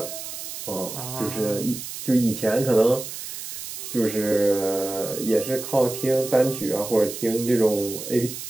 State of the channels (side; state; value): right; noise; hiss, 9 dB below the sound